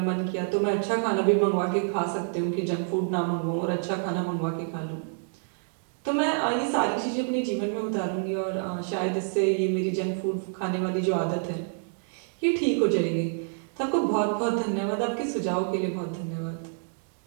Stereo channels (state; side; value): silent; left; 60 dB below the other